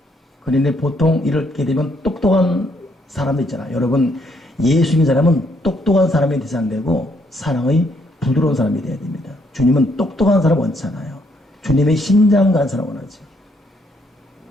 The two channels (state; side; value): normal; both; correlation 0.71